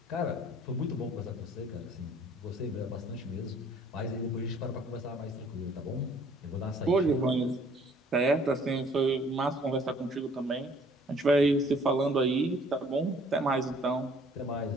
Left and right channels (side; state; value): both; normal; correlation 0.58